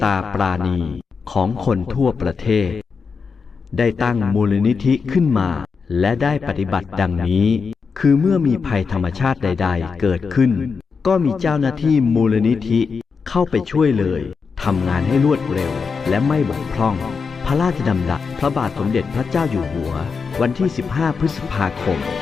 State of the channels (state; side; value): quieter; right; 5.3 dB